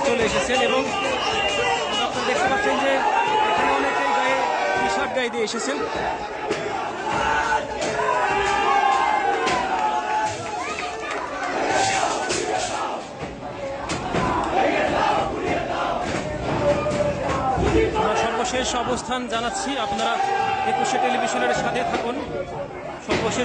চলে এসেছেন। এবং আপনারা দেখতে পাচ্ছেন যে এখানে অনেকেই গায়ে টি শার্ট গায়ে দিয়ে এসেছেন। আমরা সর্বশেষ অবস্থান জানাচ্ছি, আপনারা একুশে টেলিভিশনের সাথে থাকুন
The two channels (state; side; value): identical; both; correlation 1.00